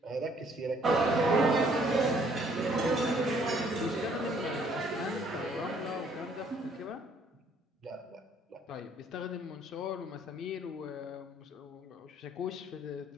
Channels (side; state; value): both; normal; correlation 0.63